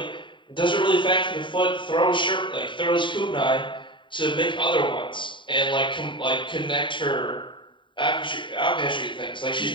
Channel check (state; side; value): late; right; 0.23 ms